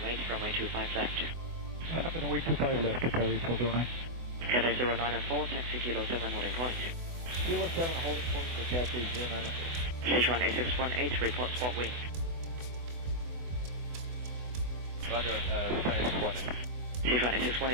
wait, runway 25 left. Line up and wait 25 left, Qatari 8409. Cathay 094, taxi Kilo 7 holding point. Kilo 7 holding point for Cathay 094. Sichuan 8618, report spot wind. Roger, Sichuan Sichuan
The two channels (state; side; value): late; left; 24 ms